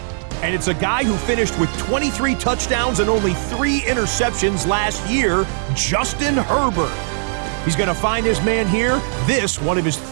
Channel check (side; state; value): left; silent; digital silence